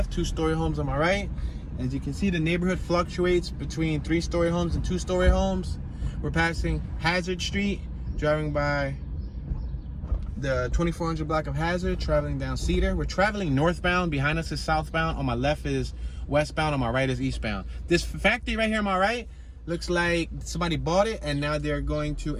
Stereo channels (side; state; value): both; identical; correlation 1.00